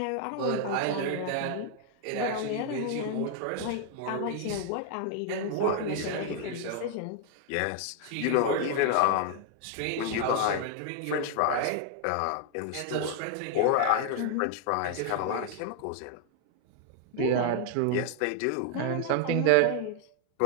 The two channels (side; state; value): both; different; correlation 0.00